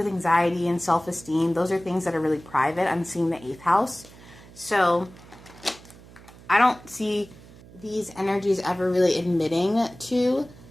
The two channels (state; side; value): noise; right; hum, 21 dB below the sound